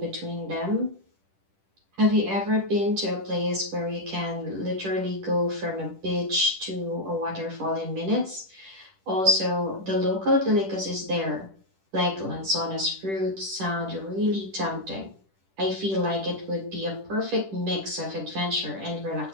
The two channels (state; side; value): late; left; 10 ms